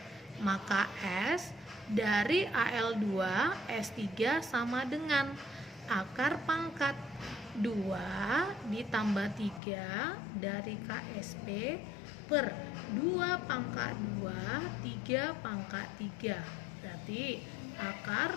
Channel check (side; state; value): right; drops out; at 9.6 s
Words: Maka S dari Al2S3 sama dengan akar pangkat 2 ditambah 3 dari KSP per 2 pangkat 2, 3 pangkat 3. Berarti